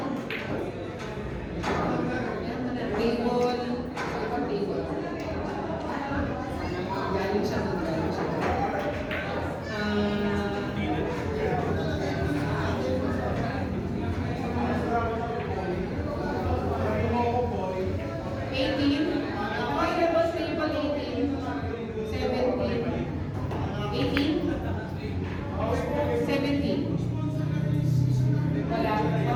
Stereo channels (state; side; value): identical; both; correlation 1.00